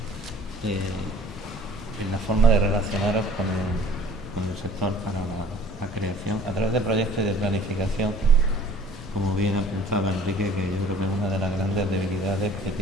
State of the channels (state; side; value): normal; both; correlation 0.51